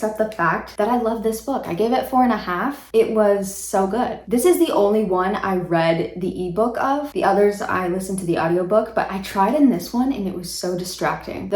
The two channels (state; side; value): identical; both; correlation 1.00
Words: the fact that I love this book. I gave it 4.5. It was so good. This is the only one I read the ebook of. The others I listened to the audiobook, but I tried in this one and it was so distracting.